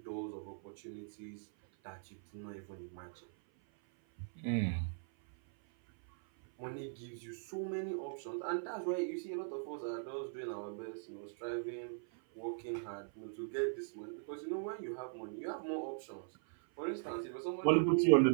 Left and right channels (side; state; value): left; silent; 51 dB below the other